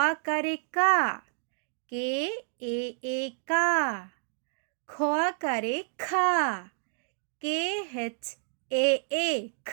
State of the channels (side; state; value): left; silent; digital silence